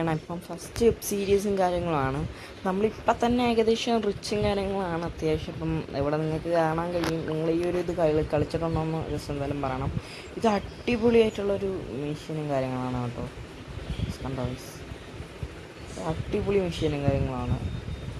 ഇപ്പം ഫസ്റ്റ് വെബ് സീരീസും കാര്യങ്ങളുമാണ്. നമ്മളിപ്പം തന്നെ ഏകദേശം റിച്ചും കാര്യങ്ങളാണ് അത്യാവശ്യം. ഇപ്പം ഇവിടെ നിങ്ങൾക്ക് കാണാൻ കഴിയും. നിങ്ങൾ ഈ ഒരു ഇത് കളിച്ചിട്ടുണ്ടോ എന്ന് ജസ്റ്റ് എന്തായാലും പറയണം. ഇത് അടിപൊളിയായിട്ടുള്ളൊരു മെഷീനും കാര്യങ്ങളാണ് കേട്ടോ. കണ്ടോ ഗൈസ്, അടിപൊളി മെഷീനും കാര്യങ്ങളാണ്.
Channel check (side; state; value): both; identical; correlation 1.00